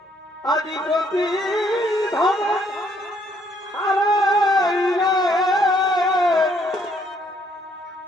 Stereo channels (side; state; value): both; normal; correlation 0.68